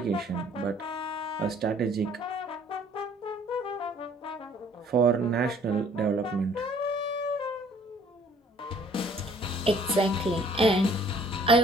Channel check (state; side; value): normal; both; correlation 0.57